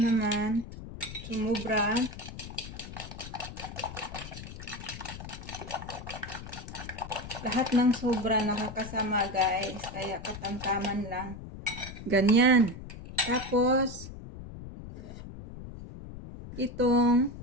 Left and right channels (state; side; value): noise; left; rumble, 12 dB below the sound